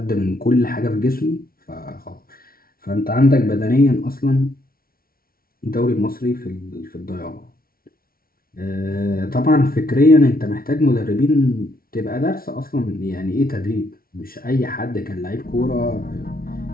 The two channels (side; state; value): right; late; 0.43 ms